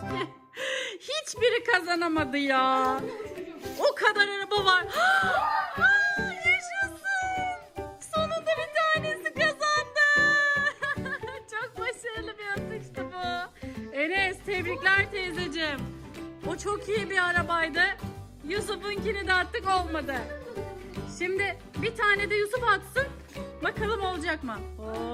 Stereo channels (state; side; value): identical; both; correlation 1.00